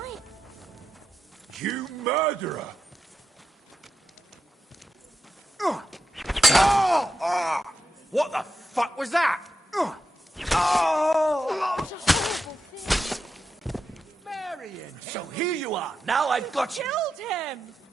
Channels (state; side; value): normal; both; correlation 0.86